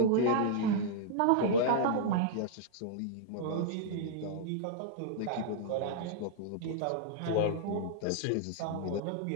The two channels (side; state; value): both; different; correlation -0.02